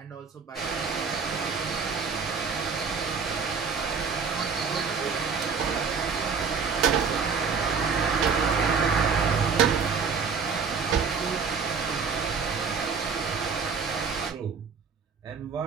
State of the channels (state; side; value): quieter; left; 5.6 dB